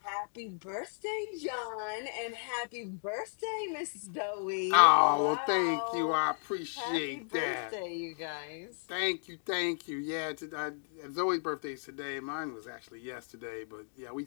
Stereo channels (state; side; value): silent; right; digital silence